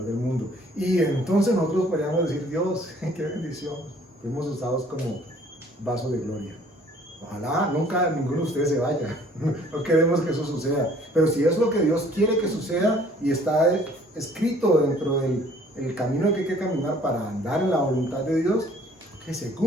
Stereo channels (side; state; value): both; normal; correlation 0.56